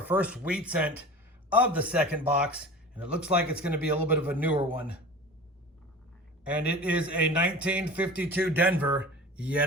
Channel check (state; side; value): normal; both; correlation 0.36